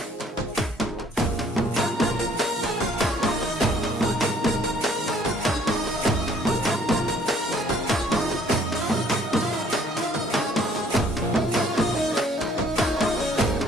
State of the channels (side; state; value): both; normal; correlation 0.60